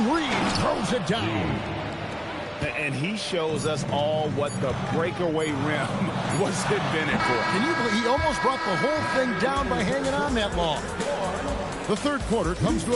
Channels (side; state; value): both; identical; correlation 1.00